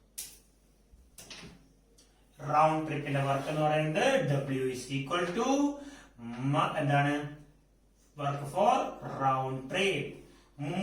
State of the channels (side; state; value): both; identical; correlation 1.00